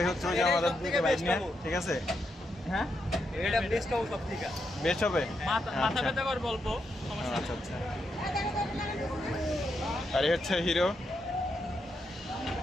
হচ্ছে ওই যে আমাদের বাইক নিয়ে, ঠিক আছে। হ্যাঁ, এটা বেস্ট হবে সব থেকে। বেস্ট হবে। মাথা ব্যথা করে বলবো, আচ্ছা আচ্ছা। আর এই হচ্ছে হিরো।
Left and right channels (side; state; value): both; normal; correlation 0.82